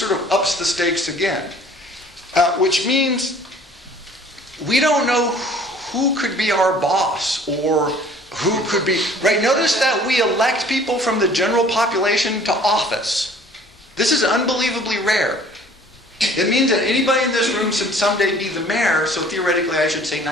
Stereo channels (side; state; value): both; normal; correlation 0.52